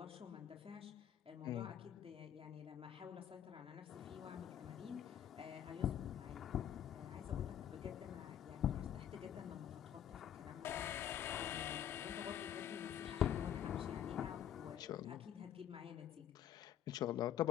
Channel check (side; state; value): right; quieter; 10.1 dB